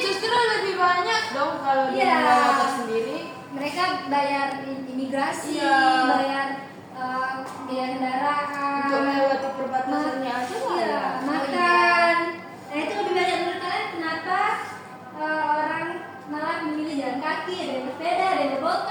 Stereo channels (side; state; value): both; identical; correlation 1.00